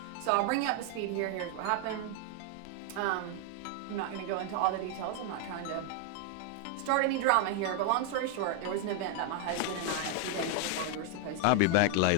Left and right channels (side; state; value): both; different; correlation 0.00